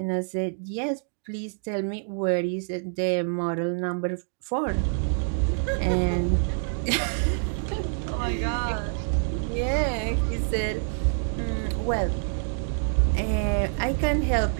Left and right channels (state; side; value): silent; left; digital silence